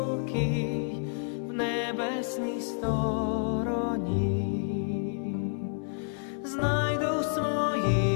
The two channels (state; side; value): silent; right; 55 dB below the other